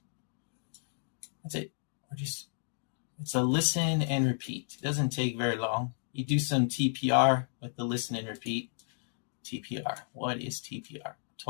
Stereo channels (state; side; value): silent; right; digital silence